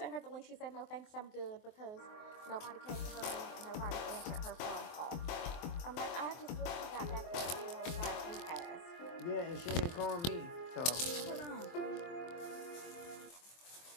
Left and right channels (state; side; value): late; right; 23 ms